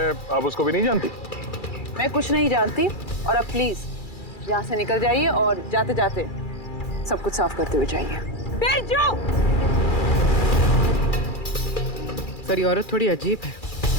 आप उसको भी नहीं जानती? मैं कुछ नहीं जानती, और अब प्लीज यहाँ से निकल जाइए और जाते जाते सब कुछ साफ करते हुए जाइए। बिरजू! सर ये औरत थोड़ी अजीब है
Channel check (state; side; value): late; right; 2.4 ms